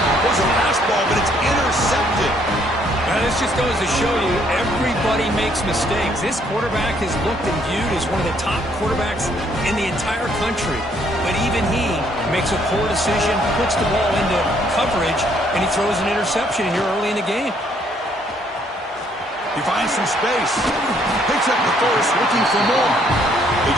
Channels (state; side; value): normal; both; correlation 0.67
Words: There's a fastball, but it's intercepted. Now, this just goes to show you everybody makes mistakes. This quarterback is looked and viewed as one of the top quarterbacks in the entire country. But even he makes a poor decision, puts the ball into coverage, and he throws an interception here early in the game. He finds some space. Picks up the first, looking for more. They